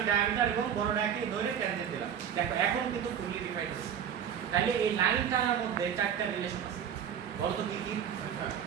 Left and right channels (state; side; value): quieter; left; 8.6 dB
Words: ডায়ামিটার এবং বড়টাকে ধরে ট্যানজেন্ট দিলাম। দেখো এখন কিন্তু ফুললি ডিফাইন্ড হয়েছে। তাহলে এই লাইন টানার মধ্যে চারটা রিলেশন আছে। বলো তো কি কি?